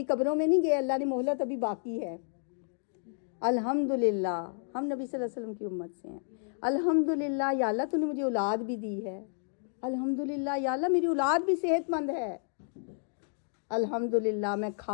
قبروں میں نہیں گئے، اللہ نے مہلت ابھی باقی ہے. الحمدللہ ہم نبی صلی اللہ علیہ وسلم کی امت سے ہیں. الحمدللہ یا اللہ تو نے مجھے اولاد بھی دی ہے. الحمدللہ یا اللہ میری اولاد بھی صحت مند ہے. الحمدللہ میں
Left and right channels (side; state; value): right; silent; digital silence